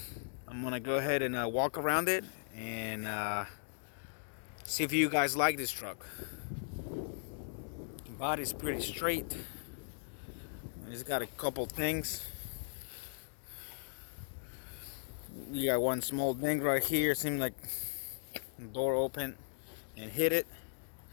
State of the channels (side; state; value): right; silent; digital silence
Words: I'm gonna go ahead and walk around it and see if you guys like this truck. The body's pretty straight. It's got a couple things. You got one small ding right here. Seems like the door opened and hit it.